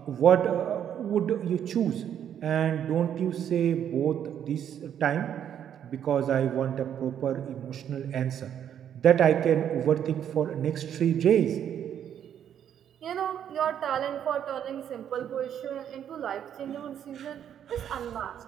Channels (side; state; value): left; quieter; 9.4 dB